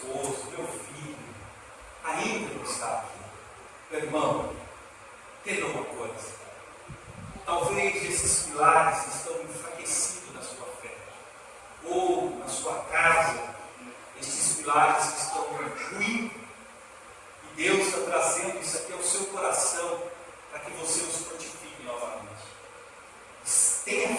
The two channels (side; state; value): both; identical; correlation 1.00